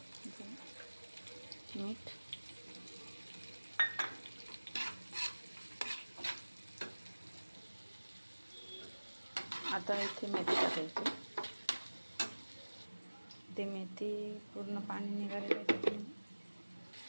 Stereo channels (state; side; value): inverted; both; correlation -1.00